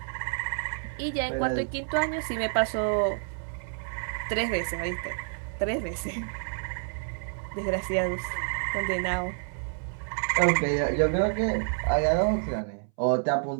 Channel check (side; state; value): left; silent; 59 dB below the other